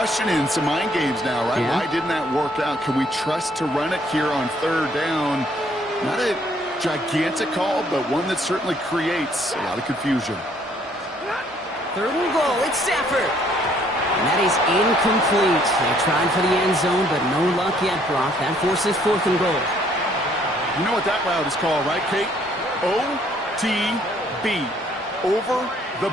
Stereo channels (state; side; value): normal; both; correlation 0.64